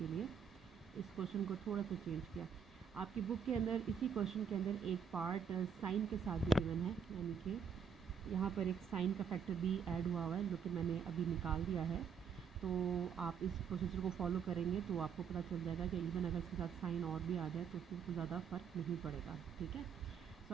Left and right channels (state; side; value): quieter; left; 7.1 dB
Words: लिए इस क्वेश्चन को थोड़ा सा चेंज किया। आपकी बुक के अंदर इसी क्वेश्चन के अंदर एक पार्ट साइन के साथ भी गिवन है, यानी कि यहाँ पर एक साइन का फैक्टर भी ऐड हुआ है, जो कि मैंने अभी निकाल दिया है। तो आप इस प्रोसीजर को फॉलो करेंगे तो आपको पता चल जाएगा कि इवन अगर इसके साथ साइन और भी आ जाए तो उससे कोई ज़्यादा फ़र्क नहीं पड़ेगा, ठीक है।